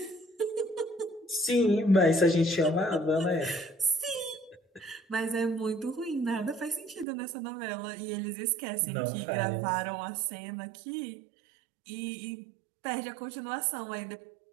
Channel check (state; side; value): drops out; left; at 7.1 s